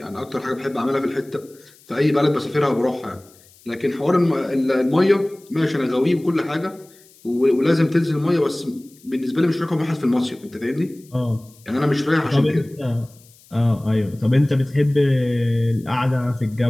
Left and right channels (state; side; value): noise; left; hiss, 27 dB below the sound